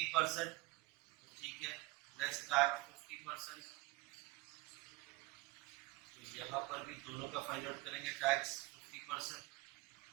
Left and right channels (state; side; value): quieter; left; 21.4 dB